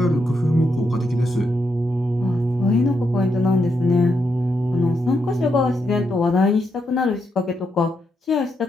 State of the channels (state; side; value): normal; both; correlation 0.81